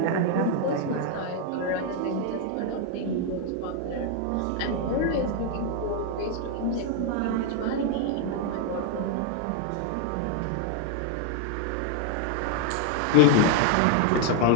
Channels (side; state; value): both; different; correlation 0.01